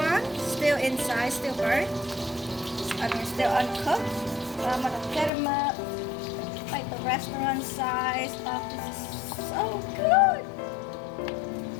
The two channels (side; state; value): right; drops out; at 5.3 s